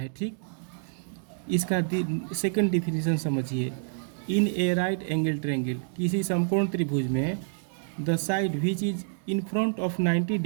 ठीक, इसका सेकंड डिफिनीशन समझिए। इन ए राइट एंगल ट्रायंगल, किसी समकोण त्रिभुज में the side which is in front of 90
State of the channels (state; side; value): silent; left; digital silence